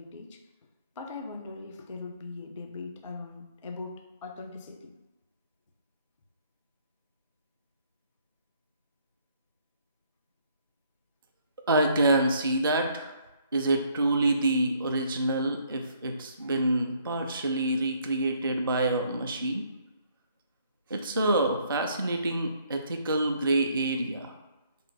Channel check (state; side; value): inverted; both; correlation -0.66